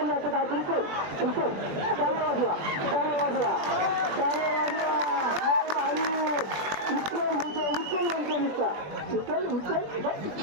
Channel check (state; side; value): late; left; 20 ms